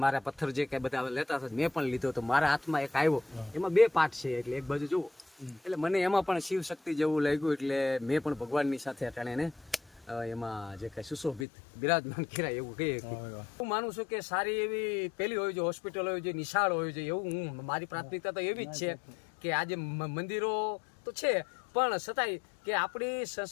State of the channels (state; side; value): drops out; right; at 11.5 s